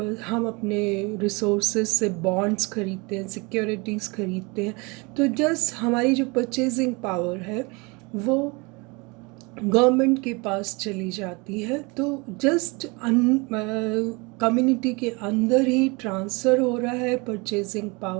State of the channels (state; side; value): quieter; left; 27.7 dB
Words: अपने रिसोर्सेज से बॉन्ड्स खरीदते हैं, सिक्योरिटीज़ खरीदते हैं, तो जस्ट हमारी जो परचेजिंग पावर है वो गवर्नमेंट के पास चली जाती है। तो जस्ट कम्युनिटी के अंदर ही ट्रांसफ़र हो रहा है परचेजिंग